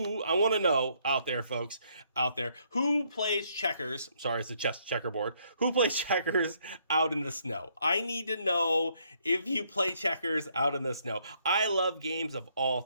I want to know out there, folks, who plays checkers? Sorry, it's a checkerboard. Who plays checkers out in the snow? I need to know if you play checkers out in the snow. I love games of all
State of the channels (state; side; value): inverted; both; correlation -0.70